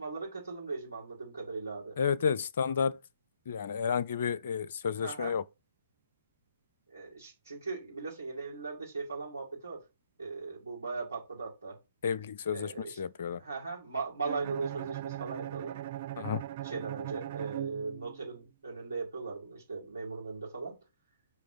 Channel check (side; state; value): both; inverted; correlation -0.70